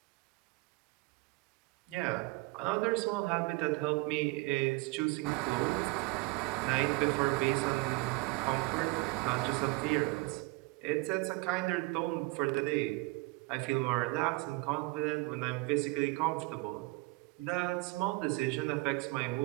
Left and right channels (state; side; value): quieter; left; 24.0 dB